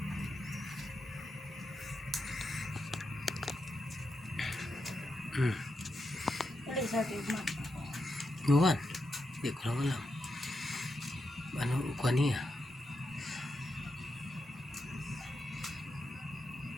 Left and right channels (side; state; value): both; normal; correlation 0.86